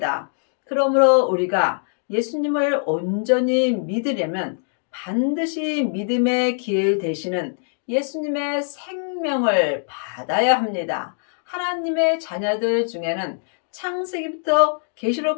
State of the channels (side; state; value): right; silent; digital silence